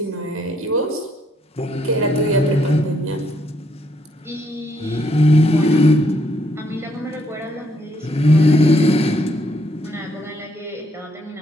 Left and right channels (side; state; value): both; normal; correlation 0.72